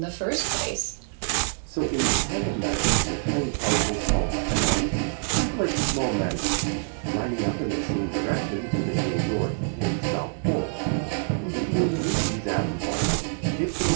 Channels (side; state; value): left; silent; digital silence